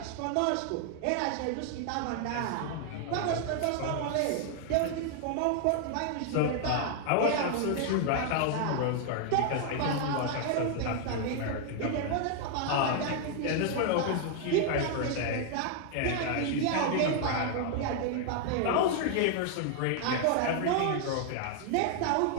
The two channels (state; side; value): different; both; correlation 0.00